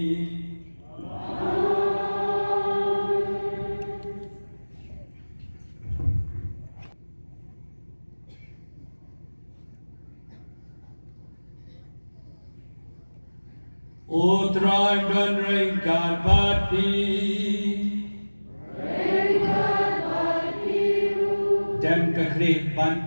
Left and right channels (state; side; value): inverted; both; correlation -1.00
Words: Utrai dan ringkat pati Dan kekrik